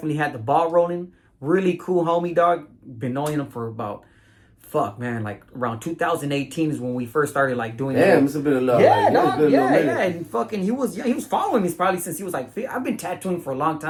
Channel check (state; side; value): identical; both; correlation 1.00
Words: had the ball rolling. Really cool homie, dog. Been knowing him for about like around 2018 is when we first started like doing that. Damn, it's been a lot. Yeah, dog. Yeah. And fucking he was following me probably since he was like, I've been tattooing for a long